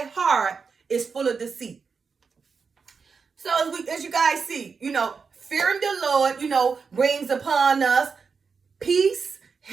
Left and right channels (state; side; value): quieter; left; 5.4 dB